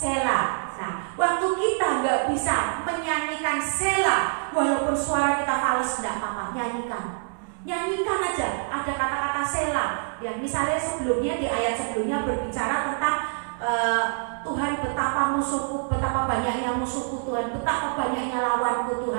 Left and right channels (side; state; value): left; silent; digital silence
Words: Nah, waktu kita nggak bisa menyanyikan Sela, walaupun suara kita fals, tidak apa-apa, nyanyikan aja. Ada kata-kata Sela. Ya, misalnya sebelumnya di ayat sebelumnya berbicara tentang Tuhan betapa musuhku, betapa banyaknya musuhku Tuhan, betapa banyaknya lawanku